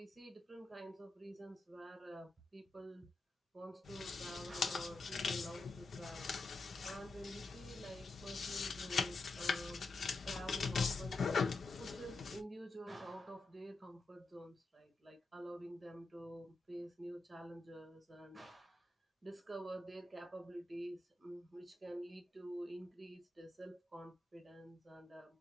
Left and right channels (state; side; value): quieter; right; 3.2 dB